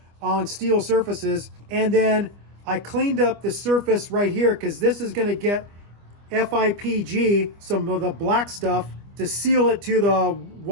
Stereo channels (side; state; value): left; late; 25 ms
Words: on steel surfaces. And then I cleaned up the surface right here because this is going to get FIPG, some of the black stuff, to seal it to the